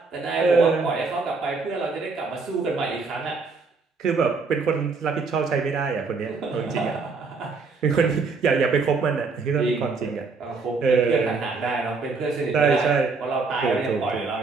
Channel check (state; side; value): quieter; left; 4.4 dB